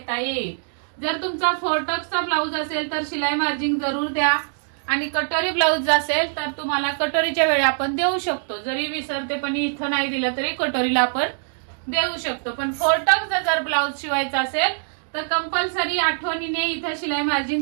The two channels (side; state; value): left; silent; digital silence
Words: येईल. जर तुमचा 4 टक्सचा ब्लाऊज असेल तर शिलाई मार्जिन जरूर द्या. आणि कटोरी ब्लाऊज असेल तर तुम्हाला कटोरीच्या वेळी आपण देऊ शकतो, जरी विसरते पण इथं नाही दिलं तरी कटोरीला आपण देऊ शकतो. पण 4 टक्सचा जर ब्लाऊज शिवायचा असेल तर कंपल्सरी आठवणीने इथं शिलाई